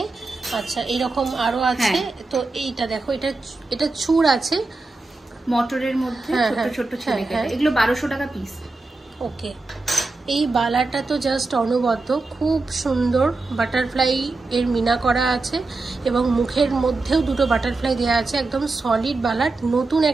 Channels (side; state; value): left; quieter; 3.4 dB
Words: আচ্ছা, এইরকম আরো আছে। তো এইটা দেখো, এটা চূড় আছে মটরের মধ্যে, ছোট ছোট ছেলে কেটে, এগুলো 1200 টাকা পিস। ওকে। এই বালাটা তো জাস্ট অনবদ্য, খুব সুন্দর। বাটারফ্লাই এর মিনা করা আছে এবং মুখের মধ্যেও দুটো বাটারফ্লাই দেওয়া আছে, একদম সলিড বালা। নতুন